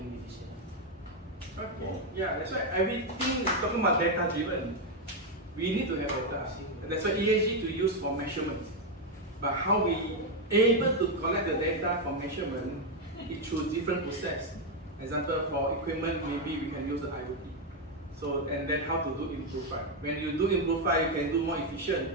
decisions. Okay. Yeah, that's why everything is talking about data driven. We need to have data. That's why ESG to use for measurement. But how we able to collect the data from measurement, it through different process. Example, for equipment, maybe we can use the IoT. So, and then how to do improve. When you do improve, you can do more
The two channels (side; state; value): both; normal; correlation 0.03